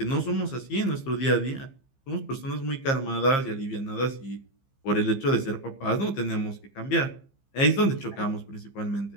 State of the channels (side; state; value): right; late; 15 ms